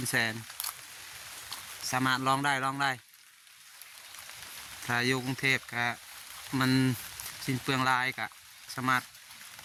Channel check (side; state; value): both; identical; correlation 1.00